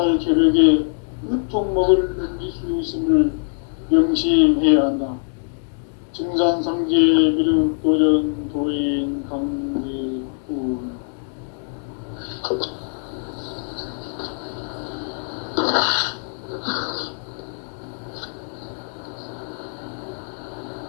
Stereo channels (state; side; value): silent; right; digital silence